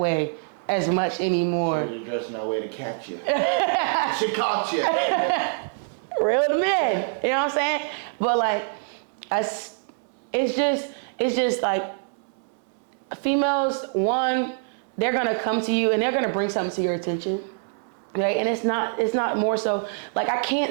as much anymore. So you're dressing that way to catch you. She caught you. Real to men, you know what I'm saying? But like, it's just like females. One, they're gonna come to you and they're gonna bring something to your attention, right? And it's not more so like, I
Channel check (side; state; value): left; silent; 62 dB below the other